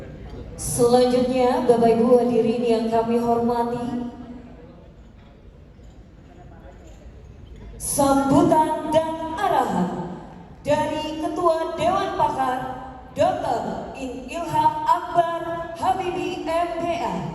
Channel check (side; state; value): both; identical; correlation 1.00